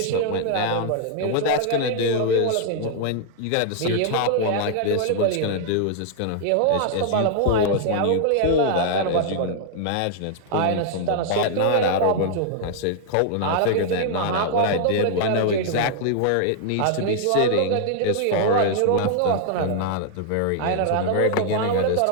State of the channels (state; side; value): different; both; correlation 0.00